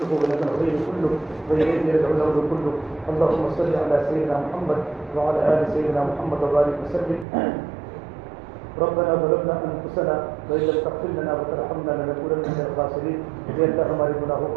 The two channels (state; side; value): drops out; left; at 7.2 s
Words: ولك الخير كله وإليك يرجع الأمر كله. اللهم صل على سيدنا محمد وعلى آل سيدنا محمد وبارك وسلم. ربنا ظلمنا انفسنا وان لم تغفر لنا وترحمنا لنكونن من الخاسرین. اے اللہ ہمارے گناہوں